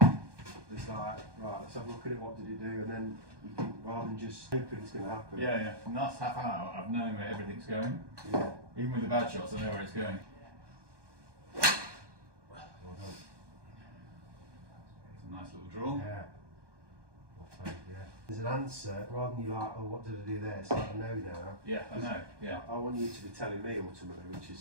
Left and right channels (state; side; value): late; left; 1.2 ms